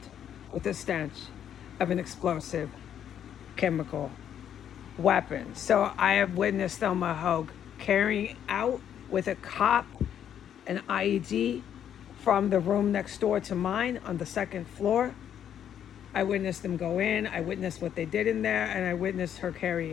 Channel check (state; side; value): quieter; right; 9.6 dB